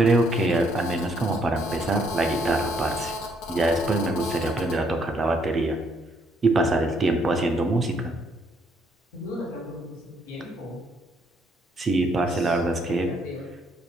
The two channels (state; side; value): normal; both; correlation 0.70